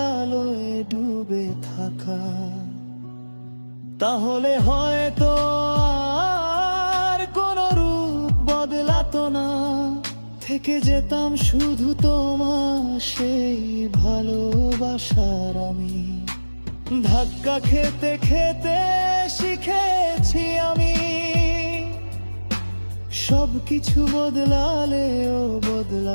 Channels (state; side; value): inverted; both; correlation -1.00